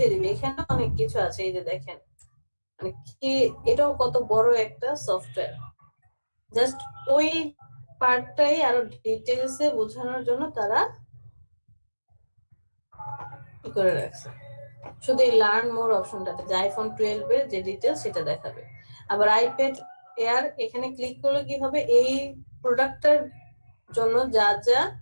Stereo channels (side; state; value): both; inverted; correlation -1.00